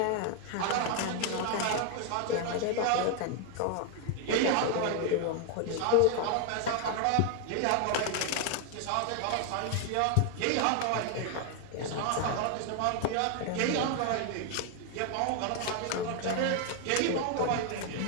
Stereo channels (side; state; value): both; different; correlation 0.00